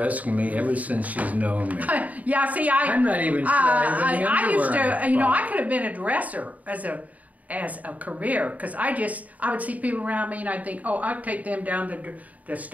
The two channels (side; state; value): left; late; 0.073 ms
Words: me ever since she's known me. Yeah, see, I'm not even sure I used to, you know, bought. I could have been a dresser as a career, because I would see people around me and I'd think, oh, I'd take them down to the